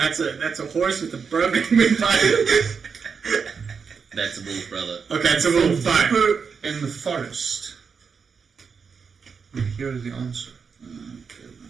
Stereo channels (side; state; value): left; quieter; 5.8 dB